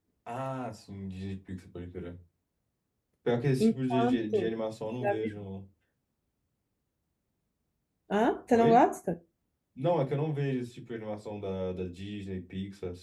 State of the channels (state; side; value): identical; both; correlation 1.00